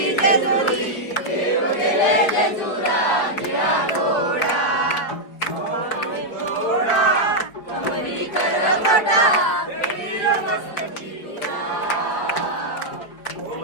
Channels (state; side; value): late; right; 4.7 ms